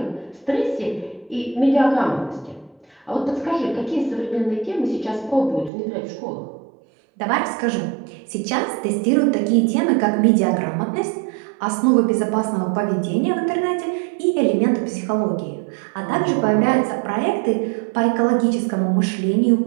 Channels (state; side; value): drops out; left; at 5.7 s